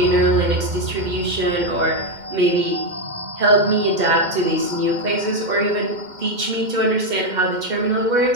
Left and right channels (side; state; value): left; late; 2.1 ms